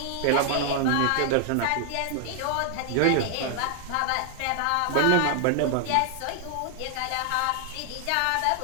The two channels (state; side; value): different; both; correlation 0.00